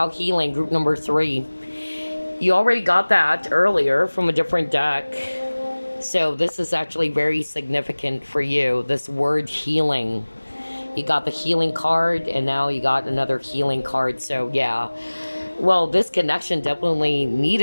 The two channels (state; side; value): inverted; both; correlation -1.00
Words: healing, group number 3. You already got that earlier from a different deck. So this is actually very significant for you, this word healing. You got the healing card, and now you got another healing card. So yeah. Well, this connection definitely